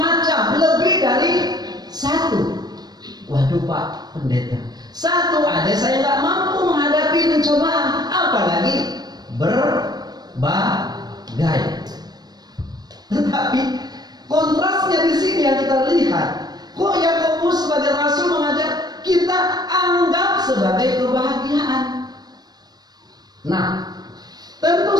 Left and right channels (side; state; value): left; late; 0.19 ms